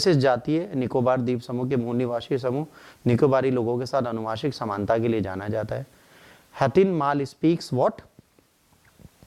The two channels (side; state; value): both; identical; correlation 1.00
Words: जातीय निकोबार द्वीप समूह के मूल निवासी समूह निकोबारी लोगों के साथ अनुवांशिक समानता के लिए जाना जाता है। हतिनमाल speaks what?